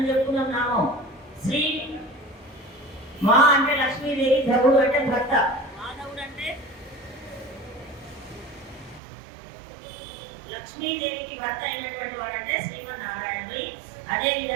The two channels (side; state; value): left; drops out; at 9.0 s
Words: చెప్పుకున్నాం నామం. శ్రీ మా అంటే లక్ష్మీదేవి, ధవుడు అంటే భర్త. లక్ష్మీదేవికి భర్త అయినటువంటి వాడంటే శ్రీమన్నారాయణుడి. అదే